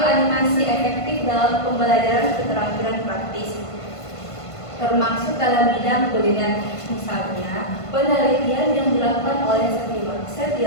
efektif dalam pembelajaran keterampilan praktis. termasuk dalam bidang kuliner. Misalnya, penelitian yang dilakukan oleh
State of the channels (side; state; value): right; late; 1.5 ms